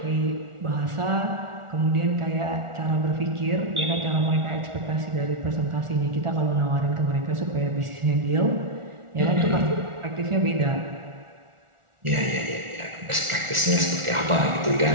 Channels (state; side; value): late; left; 1.4 ms